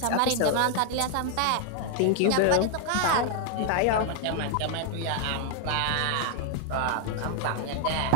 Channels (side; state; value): both; different; correlation 0.00